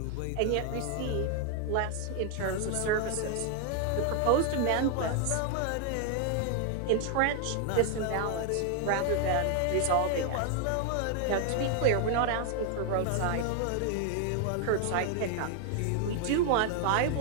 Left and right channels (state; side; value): different; both; correlation 0.00